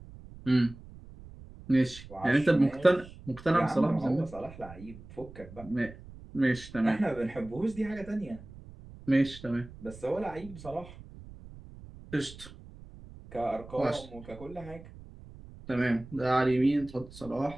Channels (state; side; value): noise; right; rumble, 17 dB below the sound